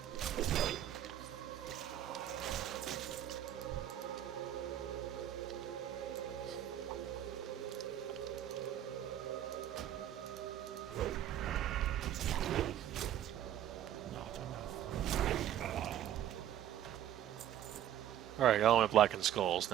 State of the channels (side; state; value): left; quieter; 11.3 dB